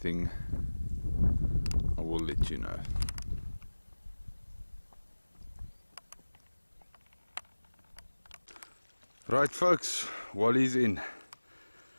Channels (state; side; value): inverted; both; correlation -1.00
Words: I will let you know. Right folks, Wally's in.